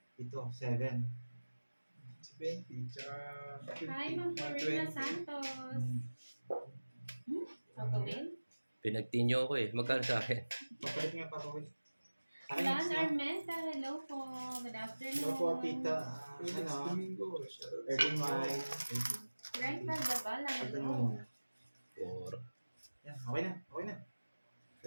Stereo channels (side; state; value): both; inverted; correlation -1.00